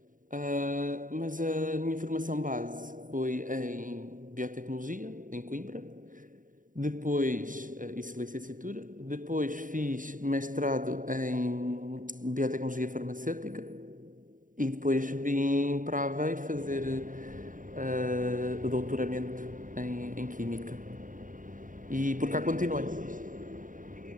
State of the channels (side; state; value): left; late; 0.39 ms